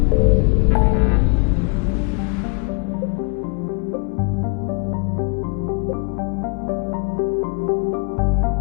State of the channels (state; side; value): quieter; right; 33.0 dB